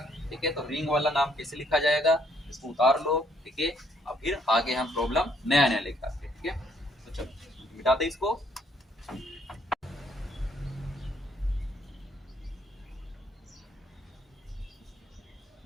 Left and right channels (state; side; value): normal; both; correlation 0.68